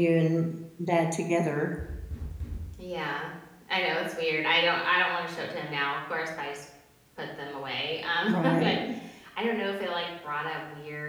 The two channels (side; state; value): both; identical; correlation 1.00